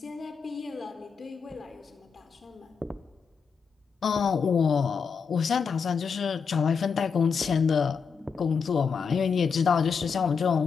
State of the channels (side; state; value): right; quieter; 5.9 dB